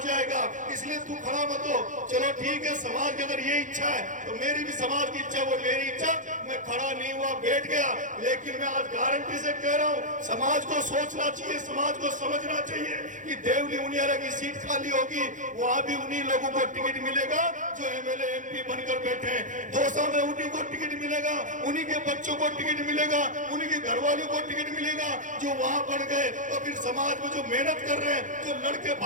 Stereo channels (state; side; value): late; left; 0.37 ms